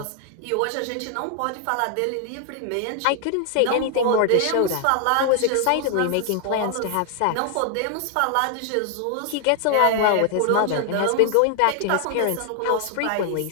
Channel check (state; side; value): different; both; correlation 0.00